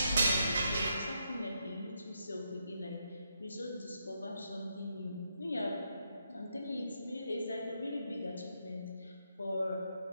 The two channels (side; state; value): both; inverted; correlation -0.80